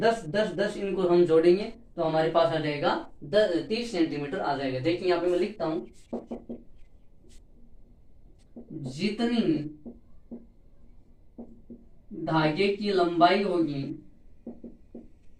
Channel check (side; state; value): both; identical; correlation 1.00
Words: इनको हम जोड़ेंगे तो हमारे पास आ जाएगा 30 सेंटीमीटर आ जाएगा। देखिए यहाँ पे मैं लिखता हूं, जितनी धागे की लंबाई होगी